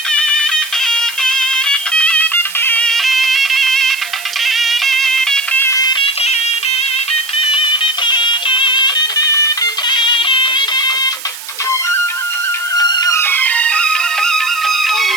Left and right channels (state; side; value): noise; right; hiss, 13 dB below the sound